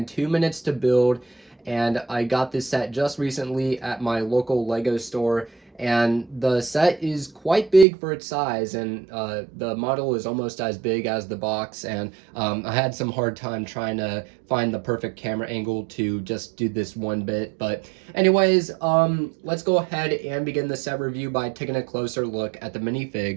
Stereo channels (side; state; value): left; drops out; at 7.9 s